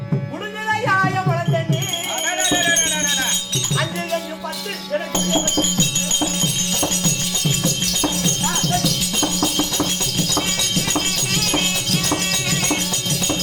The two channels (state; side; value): identical; both; correlation 1.00